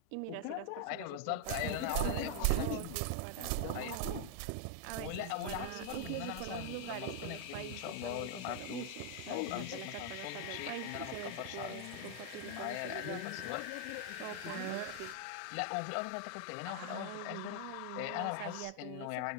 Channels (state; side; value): different; both; correlation 0.00